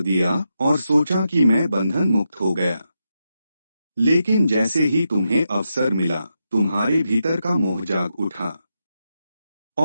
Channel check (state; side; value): inverted; both; correlation -0.86